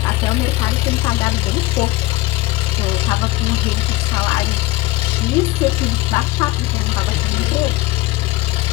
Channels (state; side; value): quieter; right; 19.0 dB